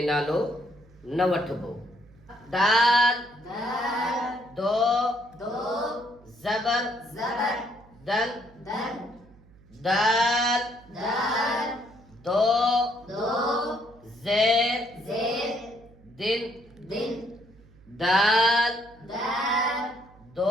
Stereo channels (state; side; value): noise; right; hum, 26 dB below the sound